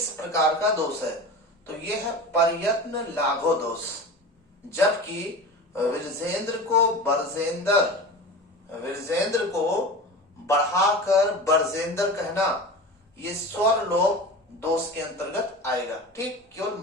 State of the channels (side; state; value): both; normal; correlation 0.31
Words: प्रकार का दोष है? तो यह है प्रयत्न लाघो दोष। जबकि विरजेंद्र को बढ़ाकर बरजेंद्र कहना ये स्वर लोप दोष के अंतर्गत आएगा। ठीक, केवल